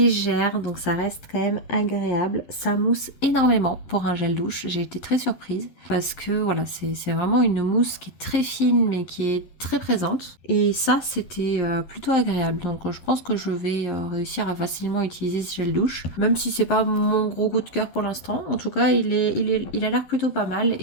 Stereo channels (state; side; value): late; right; 11 ms